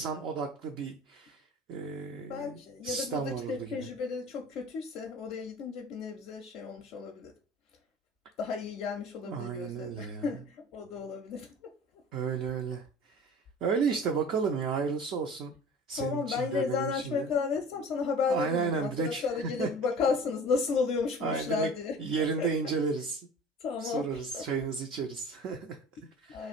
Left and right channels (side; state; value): both; normal; correlation 0.41